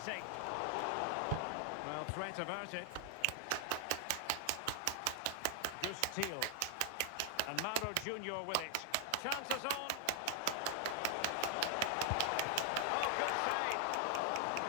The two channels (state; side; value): different; both; correlation 0.00